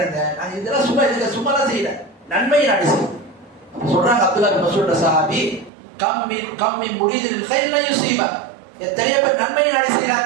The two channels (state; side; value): drops out; left; at 5.7 s